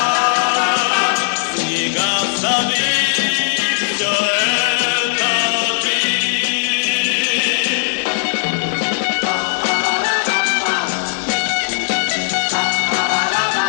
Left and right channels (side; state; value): right; silent; 63 dB below the other